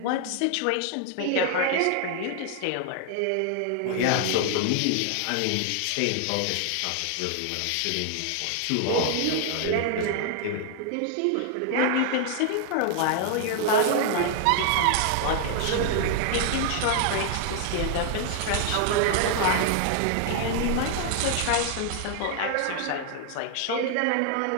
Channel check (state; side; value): different; both; correlation 0.00